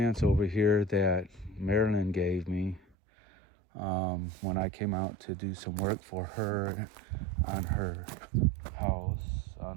over here that Marilyn gave me when I came out to do some work for her on her house,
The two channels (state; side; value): drops out; left; at 2.9 s